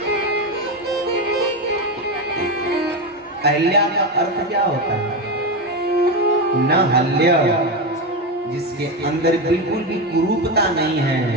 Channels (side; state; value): both; normal; correlation 0.14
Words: अहिल्या का अर्थ क्या होता है? न हल्य, जिसके अंदर बिल्कुल भी कुरूपता नहीं है,